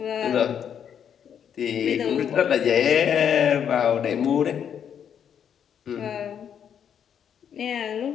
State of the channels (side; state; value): right; quieter; 8.4 dB